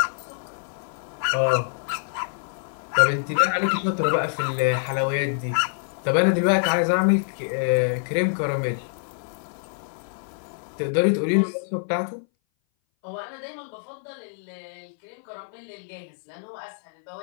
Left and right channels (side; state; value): right; silent; 59 dB below the other